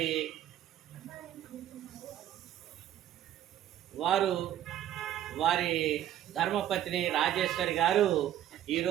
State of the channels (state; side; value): quieter; left; 11.8 dB